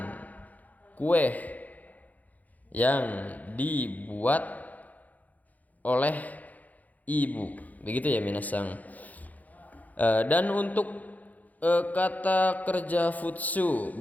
kue yang dibuat oleh ibu. Begitu ya minasang. Dan untuk kata kerja futsu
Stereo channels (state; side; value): late; right; 0.079 ms